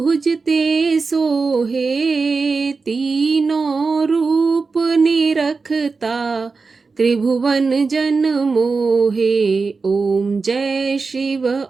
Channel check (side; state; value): left; quieter; 4.4 dB